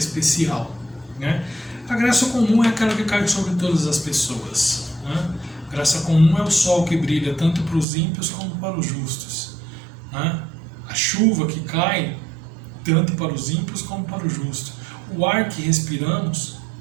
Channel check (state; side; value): drops out; left; at 7.9 s